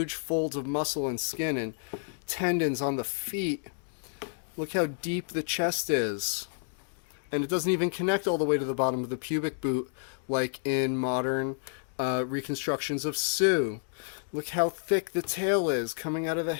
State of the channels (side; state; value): right; silent; digital silence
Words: folds of muscle and skin and tendons on the feet. Look how deep the chest is. And it doesn't even connect all the way to the bottom of the pubic boot like in modern reconstructions of Sue. Look how thick the tail is coming out of the